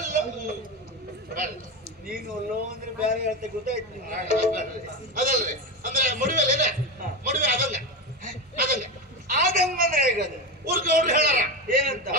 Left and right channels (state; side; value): normal; both; correlation 0.17